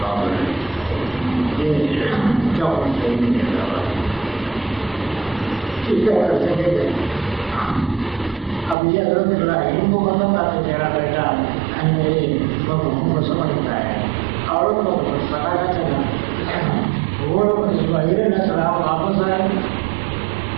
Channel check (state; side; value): drops out; left; at 8.8 s